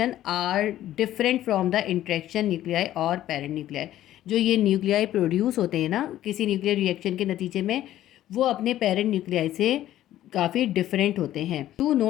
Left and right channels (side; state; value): right; quieter; 13.2 dB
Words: are different from the interaction nuclei और parent nuclei। जो ये न्यूक्लियाई प्रोड्यूस होते हैं ना किसी न्यूक्लियर रिएक्शन के नतीजे में, वो अपने पेरेंट न्यूक्लियाई से काफ़ी डिफरेंट होते हैं। 2